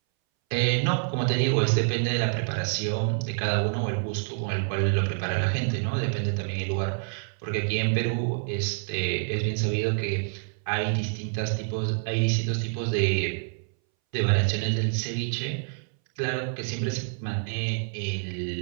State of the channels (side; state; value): left; silent; 60 dB below the other